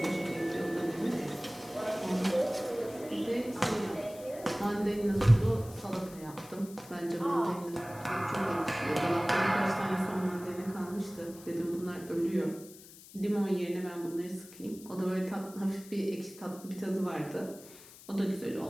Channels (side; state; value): left; noise; hiss, 19 dB below the sound